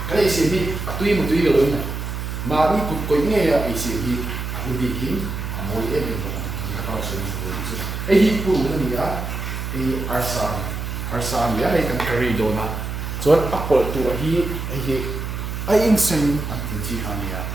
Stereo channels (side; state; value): right; noise; hum, 5 dB below the sound